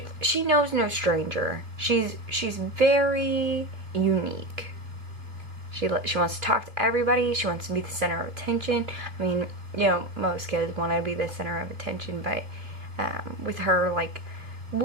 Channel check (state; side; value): late; left; 2.7 ms